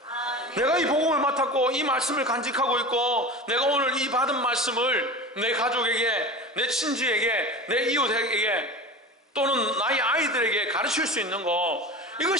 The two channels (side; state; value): both; normal; correlation 0.32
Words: 내가 이 복음을 맡았고 이 말씀을 간직하고 있고, 내가 오늘 이 받은 말씀을 내 가족에게, 내 친지에게, 내 이웃에게, 또는 나의 아이들에게 가르칠 수 있는 거,